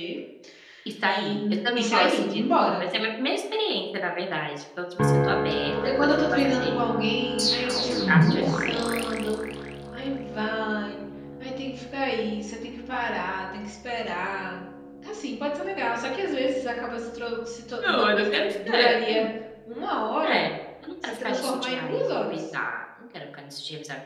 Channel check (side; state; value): both; identical; correlation 1.00